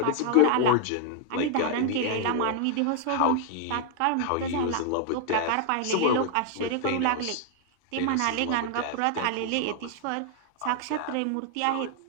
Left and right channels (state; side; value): different; both; correlation 0.00